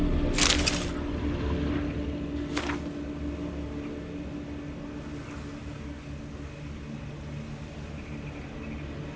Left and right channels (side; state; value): both; identical; correlation 1.00